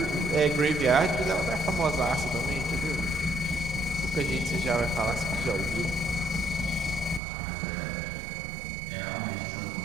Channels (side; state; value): left; drops out; at 7.2 s